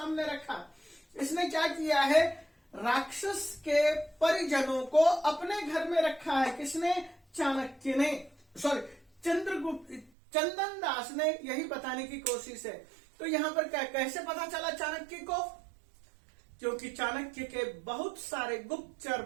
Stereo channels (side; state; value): left; drops out; at 10.1 s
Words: रखा। इसने क्या किया है? राक्षस के परिजनों को अपने घर में रखा है। किसने? चाणक्य ने, सॉरी चंद्रगुप्त, चंदन दास ने यही बताने की कोशिश है। तो यहां पर कैसे पता चला चाणक्य को? क्योंकि चाणक्य के बहुत सारे गुप्तचर,